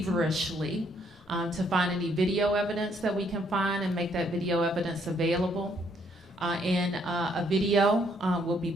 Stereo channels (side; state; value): both; normal; correlation 0.69